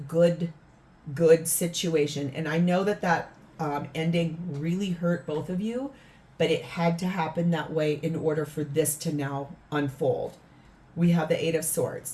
situation. And I know that ending really hurt both of you, but it had to happen that way in order for this to now unfold. We have the 8 of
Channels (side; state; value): both; identical; correlation 1.00